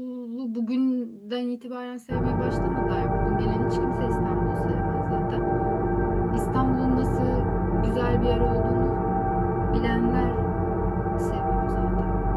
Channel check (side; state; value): both; identical; correlation 1.00